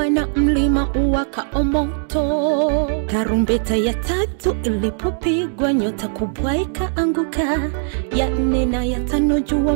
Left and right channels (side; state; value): left; silent; 66 dB below the other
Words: na mlima uwakao moto. Tarumbeta ya tatu ilipopigwa nyota kubwa ikaanguka, ya 4 na ya 5 jua